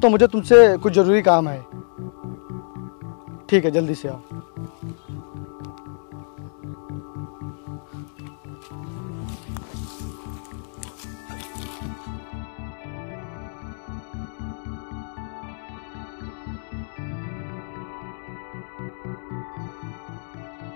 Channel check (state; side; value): silent; right; digital silence